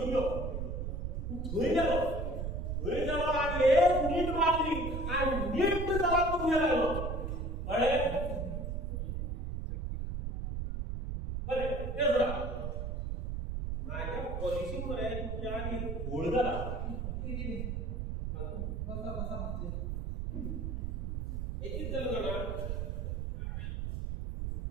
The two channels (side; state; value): right; noise; rumble, 3 dB below the sound